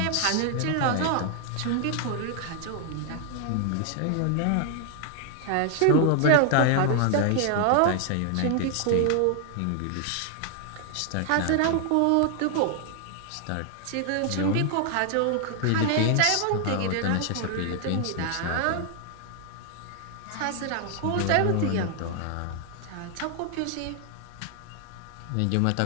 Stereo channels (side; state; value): both; different; correlation 0.00